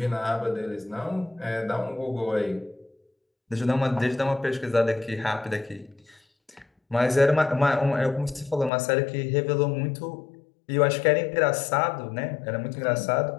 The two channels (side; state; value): right; drops out; at 8.7 s